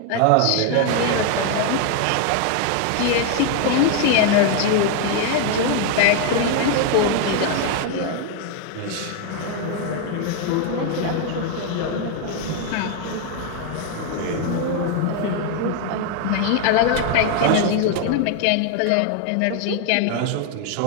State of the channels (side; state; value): both; different; correlation 0.01